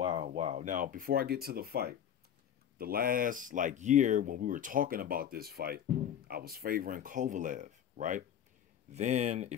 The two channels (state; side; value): quieter; right; 9.5 dB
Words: Now, before I get to the fight, the last year when we were talking about this fight, I was favoring Kovalev, right? Then